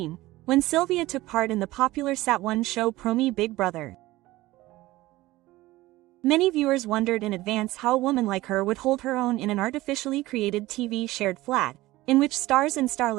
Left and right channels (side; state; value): left; quieter; 18.0 dB